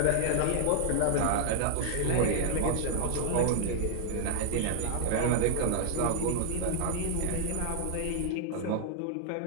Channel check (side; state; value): both; different; correlation 0.00